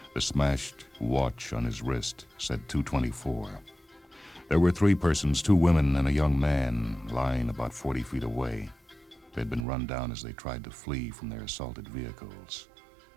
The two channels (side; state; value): left; drops out; at 9.7 s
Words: The smashed watch on his wrist said 2:24. There were 3 persons, 2 women and a young man, lying about 40 feet away. They'd been run down as they tried to flee from their assaulted vehicles.